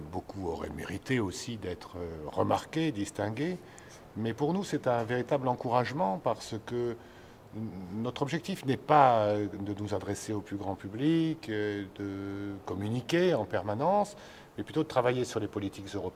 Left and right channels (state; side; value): identical; both; correlation 1.00